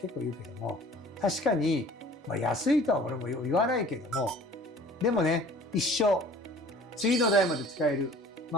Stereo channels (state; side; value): normal; both; correlation 0.49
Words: 構言うけども、確かに、安いとは俺も言わないけども、でもね一生次の代まで使える、